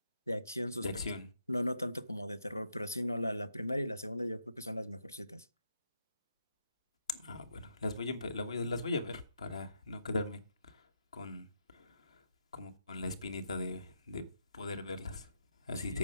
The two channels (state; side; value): inverted; both; correlation -0.80